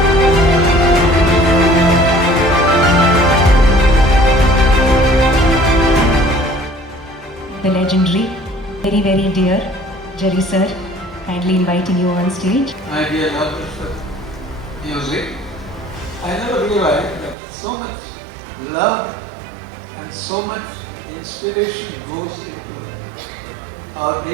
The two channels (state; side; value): drops out; left; at 17.4 s